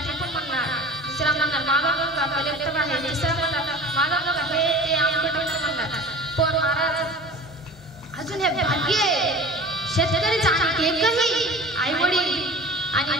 टिपून म्हणणार दुसरा म्हणणार माझा मुलगा कलेक्टर आहे तिसरा म्हणणार माझा मुलगा हे ते आमचं म्हणणार पण महाराज अजून हे भाग्य शेतकरीचा एकही आई वडील आणि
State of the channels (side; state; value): both; normal; correlation 0.39